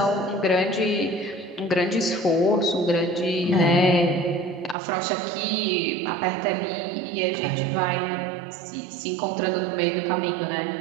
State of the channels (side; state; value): left; drops out; at 4.8 s